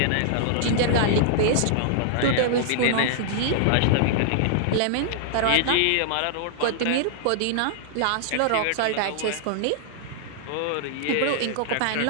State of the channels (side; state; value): both; different; correlation -0.01